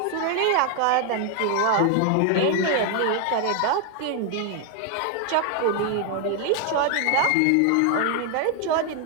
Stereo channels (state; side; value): different; both; correlation 0.01